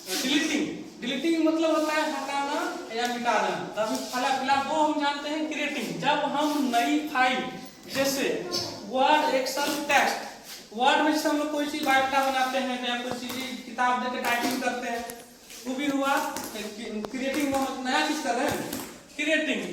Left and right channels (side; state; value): both; identical; correlation 1.00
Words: डिलीटिंग मतलब होता है हटाना या मिटा देना। तब फिलहाल वो हम जानते हैं क्रिएटिंग। जब हम नई फाइल जैसे वर्ड, एक्सेल, टेक्स्ट, वर्ड में हम लोग कोई चीज बायोडाटा बनाते हैं या कोई चीज किताब देके टाइपिंग करते हैं, वो भी हुआ क्रिएटिंग। हम नया चीज कर रहे हैं क्रिएटिंग।